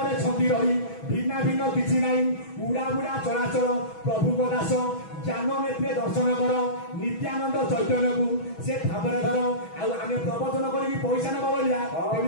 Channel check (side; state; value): right; late; 6.2 ms